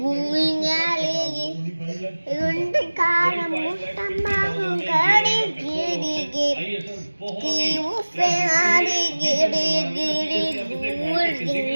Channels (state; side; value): inverted; both; correlation -1.00